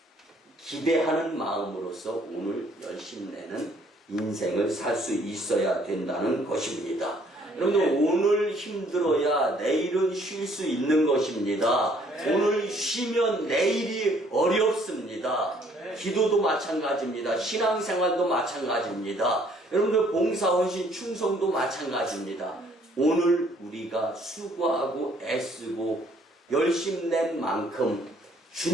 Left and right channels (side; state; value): both; normal; correlation 0.62